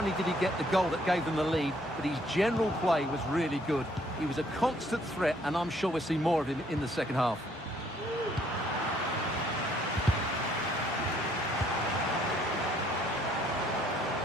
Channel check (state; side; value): normal; both; correlation 0.65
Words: did he get the goal that gave them the lead, but his general play was really good. He was a constant threat, and I'm sure we'll see more of him in the second half.